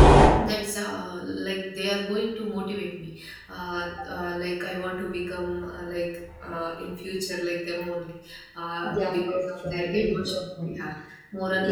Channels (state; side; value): identical; both; correlation 1.00